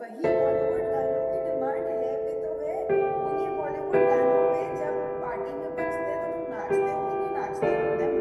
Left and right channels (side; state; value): both; identical; correlation 1.00